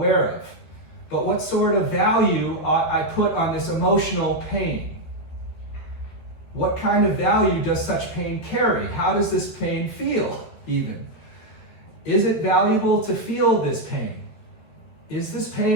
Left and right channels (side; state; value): right; late; 13 ms